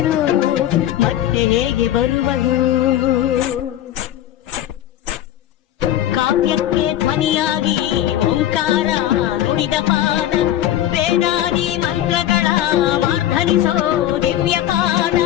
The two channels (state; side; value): quieter; right; 12.4 dB